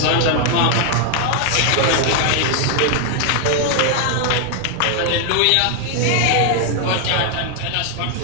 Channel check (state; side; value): different; both; correlation 0.00